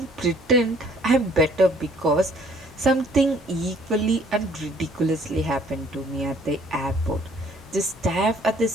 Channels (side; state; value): both; normal; correlation 0.59